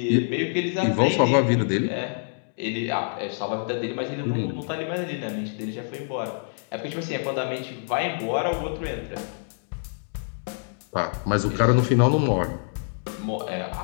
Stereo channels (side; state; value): right; silent; digital silence